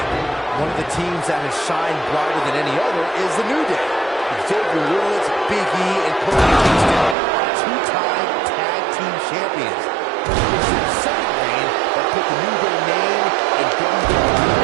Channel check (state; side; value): drops out; left; at 7.2 s